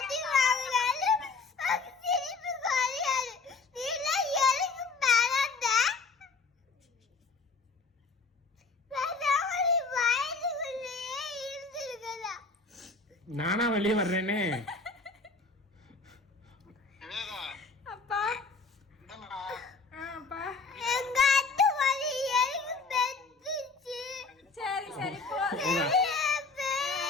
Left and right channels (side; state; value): right; quieter; 4.3 dB